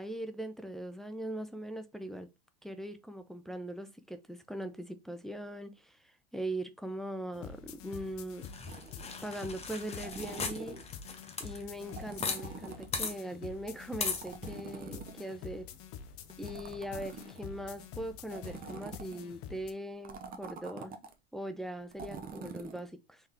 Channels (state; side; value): normal; both; correlation 0.55